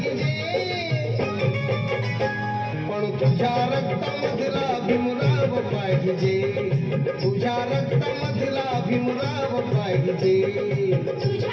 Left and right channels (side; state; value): both; identical; correlation 1.00